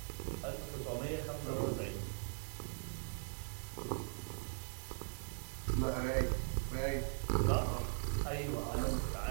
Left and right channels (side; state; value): left; silent; digital silence